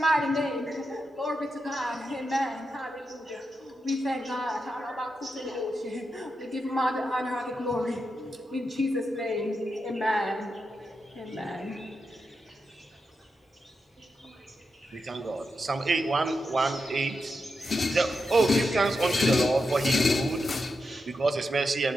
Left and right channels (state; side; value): normal; both; correlation 0.87